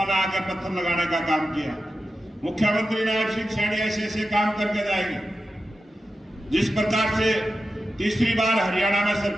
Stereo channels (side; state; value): both; normal; correlation 0.91